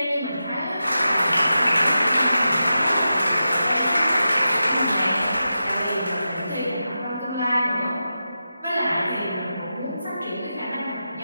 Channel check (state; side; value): inverted; both; correlation -0.90